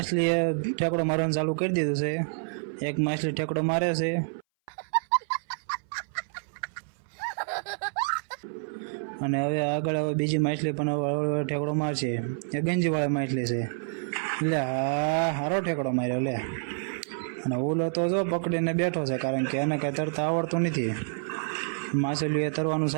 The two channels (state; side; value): silent; left; 59 dB below the other